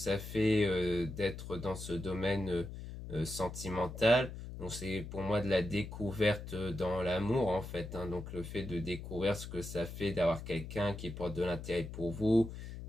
fait d'être dans ce domaine sentimental. Donc c'est pour moi de la découverte dans l'amour en fait, hein. Donc le fait de découvrir ce que ça fait d'avoir quelqu'un qui porte de l'intérêt pour vous,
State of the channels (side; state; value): left; noise; hum, 9 dB below the sound